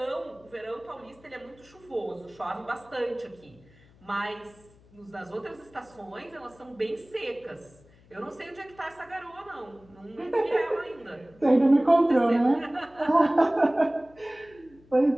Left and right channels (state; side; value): noise; left; hum, 27 dB below the sound